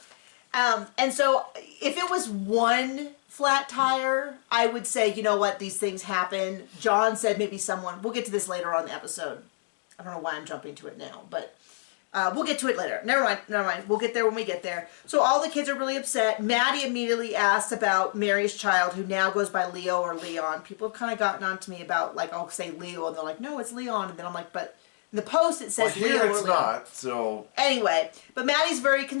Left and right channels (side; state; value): right; silent; digital silence